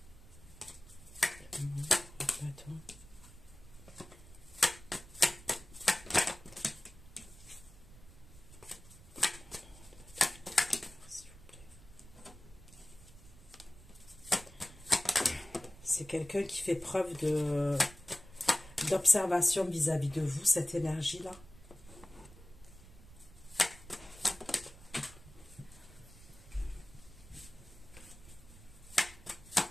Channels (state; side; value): noise; right; rumble, 19 dB below the sound